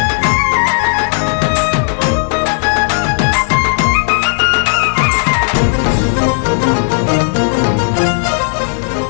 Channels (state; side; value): silent; right; 69 dB below the other